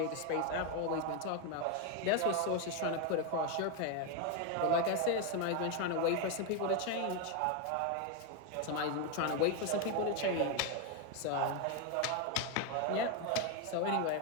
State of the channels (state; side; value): different; both; correlation 0.01